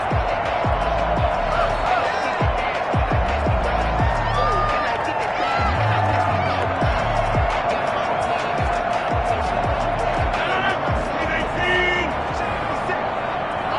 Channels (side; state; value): both; identical; correlation 1.00